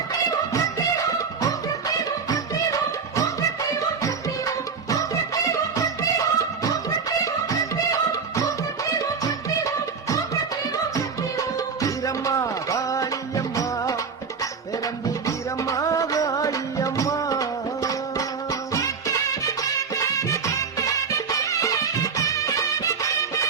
வீரம்மா காளியம்மா பெரம்பூர் வீரம்மா காளியம்மா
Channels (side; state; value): left; quieter; 5.6 dB